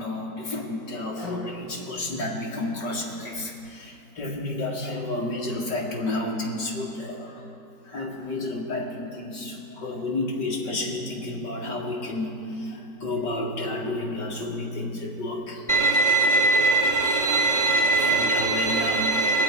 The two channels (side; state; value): right; late; 5.3 ms